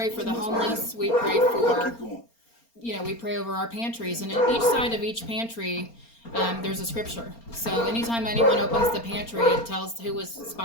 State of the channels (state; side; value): late; right; 4.3 ms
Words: for the homeless. We pray for, we pray over our pantries. And in each side of each pantry, there's a scripture. So anytime anyone opens the pantry, it tells who was